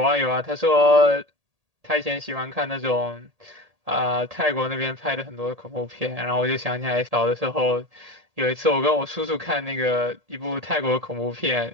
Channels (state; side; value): late; left; 1.8 ms